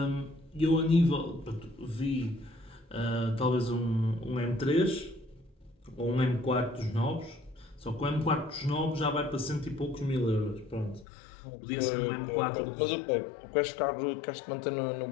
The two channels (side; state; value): right; drops out; at 11.1 s